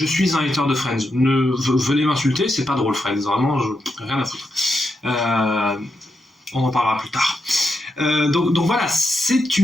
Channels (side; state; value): both; normal; correlation 0.84